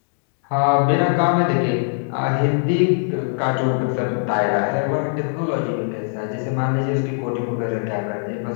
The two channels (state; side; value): silent; right; digital silence